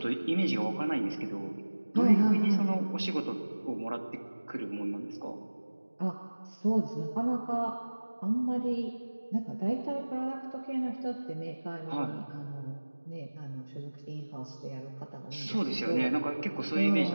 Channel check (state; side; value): inverted; both; correlation -1.00